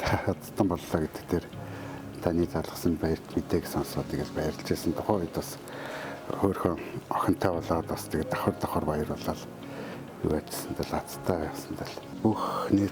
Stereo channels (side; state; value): both; identical; correlation 1.00